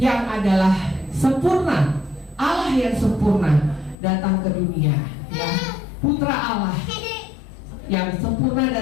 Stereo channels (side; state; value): right; drops out; at 4.0 s